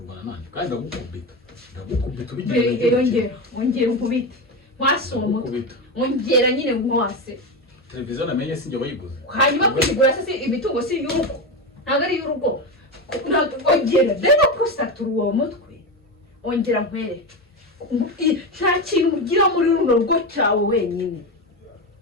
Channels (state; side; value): normal; both; correlation 0.17